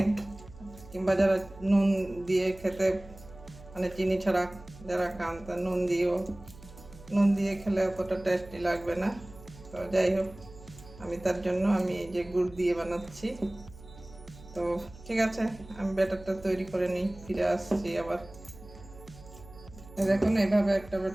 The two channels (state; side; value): noise; right; hum, 19 dB below the sound